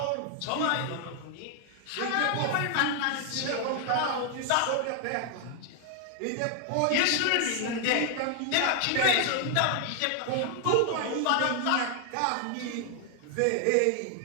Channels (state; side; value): different; both; correlation 0.00